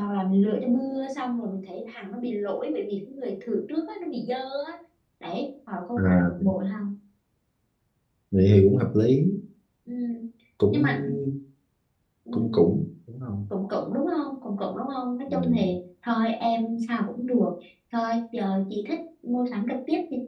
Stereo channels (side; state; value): both; identical; correlation 1.00